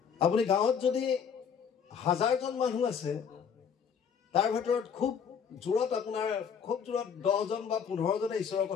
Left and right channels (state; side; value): quieter; right; 7.1 dB